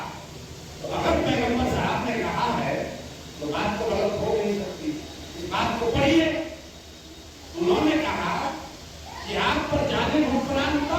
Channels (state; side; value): identical; both; correlation 1.00